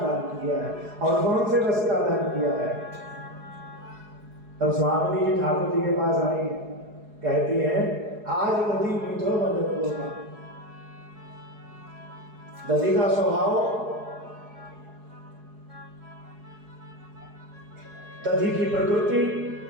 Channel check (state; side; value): late; left; 4.7 ms